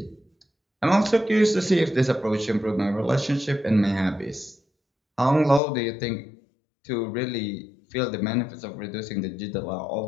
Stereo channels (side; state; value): right; drops out; at 5.6 s